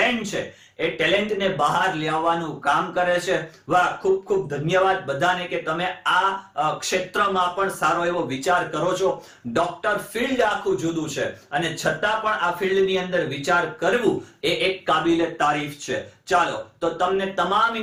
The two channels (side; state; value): both; identical; correlation 1.00